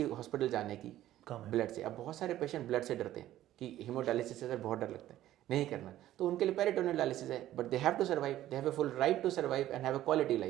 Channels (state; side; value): quieter; left; 13.6 dB